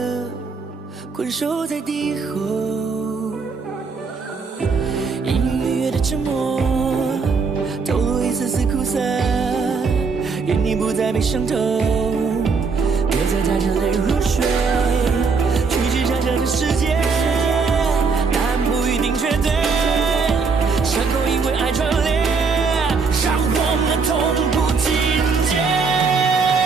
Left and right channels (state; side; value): quieter; left; 4.9 dB